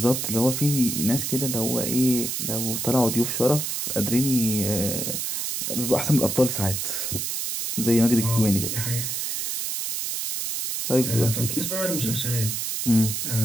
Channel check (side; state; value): right; noise; hiss, 2 dB below the sound